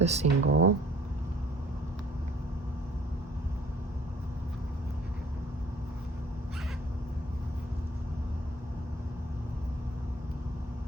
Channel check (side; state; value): both; normal; correlation 0.56